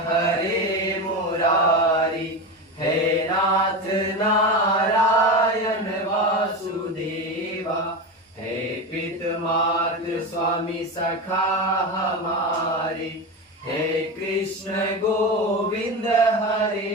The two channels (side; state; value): both; normal; correlation 0.21